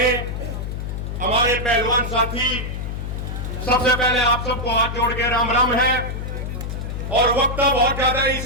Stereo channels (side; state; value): left; noise; hum, 5 dB below the sound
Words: हमारे पहलवान साथी, सबसे पहले आप सबको हाथ जोड़ के राम राम है। और वक्त बहुत ज्यादा है